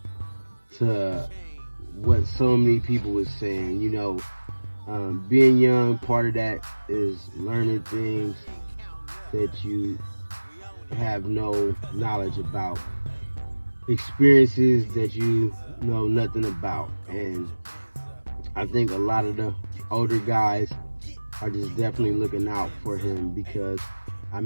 to what so many people was saying. Being young, part of that is learning things that you have no knowledge about, experiences that you know nothing about. And I think a lot of the older guys are just definitely looking out for him, because I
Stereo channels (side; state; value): both; inverted; correlation -1.00